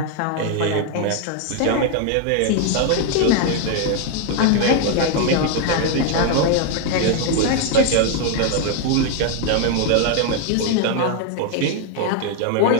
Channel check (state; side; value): different; both; correlation 0.01